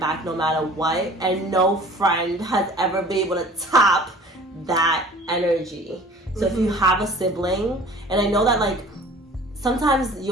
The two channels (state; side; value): normal; both; correlation 0.47